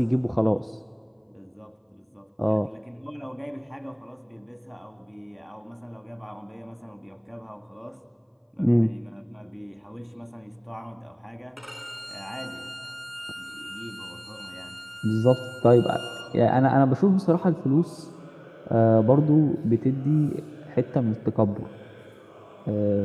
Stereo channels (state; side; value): identical; both; correlation 1.00